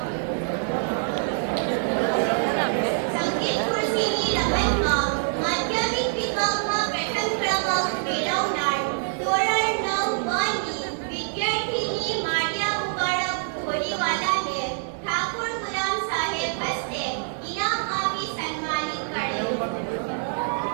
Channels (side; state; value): left; silent; 62 dB below the other